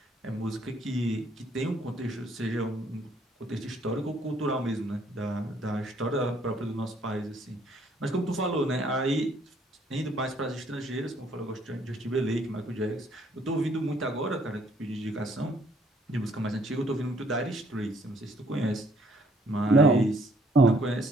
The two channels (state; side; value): normal; both; correlation 0.65